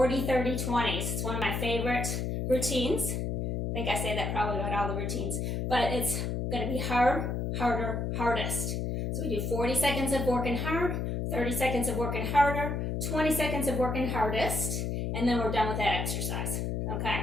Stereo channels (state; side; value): noise; left; hum, 1 dB below the sound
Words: 30, 20s. It's one of my favorite routines. I think I say that probably about all the routines, but it's going to be hard, harder, hardest. So we do 40 seconds of working hard, 30 seconds of working harder, 20 seconds of working hardest, and then we're done with that exercise. Okay,